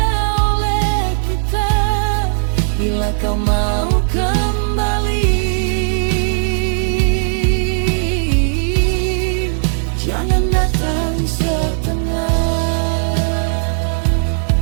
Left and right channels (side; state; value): left; silent; digital silence